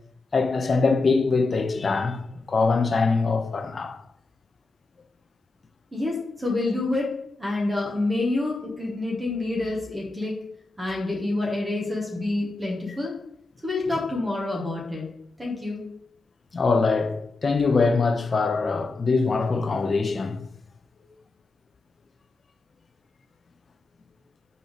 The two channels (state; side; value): quieter; right; 3.3 dB